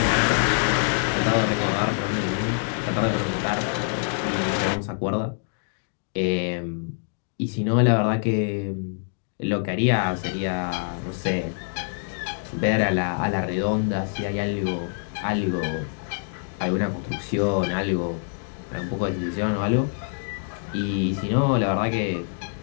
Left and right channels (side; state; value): right; silent; 62 dB below the other